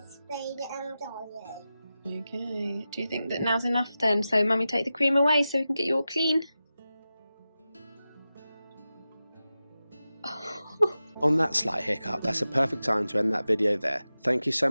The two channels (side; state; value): both; inverted; correlation -0.93